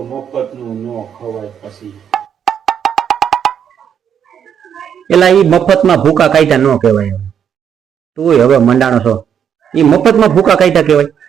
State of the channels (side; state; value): left; quieter; 8.3 dB